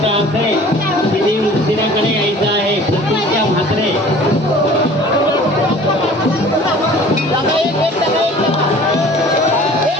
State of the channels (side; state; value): both; normal; correlation 0.47